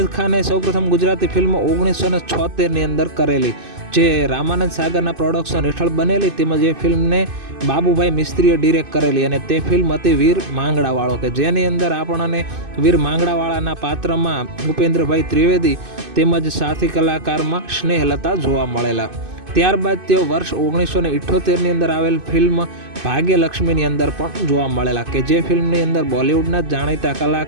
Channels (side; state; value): left; late; 2.5 ms